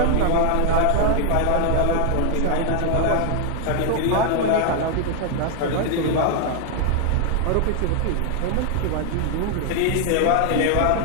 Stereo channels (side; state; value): both; different; correlation 0.00